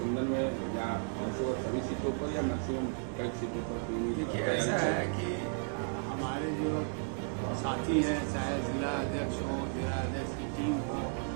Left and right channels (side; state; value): left; silent; 55 dB below the other